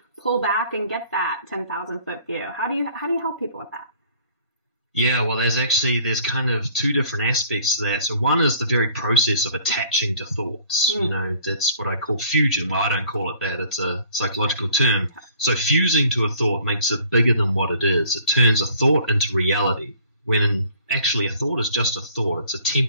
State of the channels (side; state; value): both; inverted; correlation -0.55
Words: pull back and get that 10,000 foot view. How do you help people with that? Yeah, well, there's kind of two different aspects to that. So one is the very process of attaching to thoughts. You know, that's what I call fusion. Well, I don't call it that. It's a psychological term. So fusing to a thought makes it bigger than what it is. It turns a thought into reality, when actually a thought is just a thought. It's a